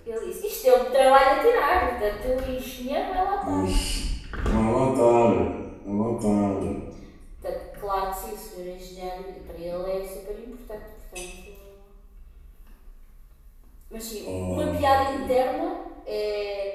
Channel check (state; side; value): identical; both; correlation 1.00